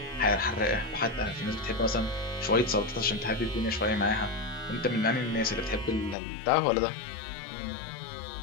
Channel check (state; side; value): drops out; right; at 6.2 s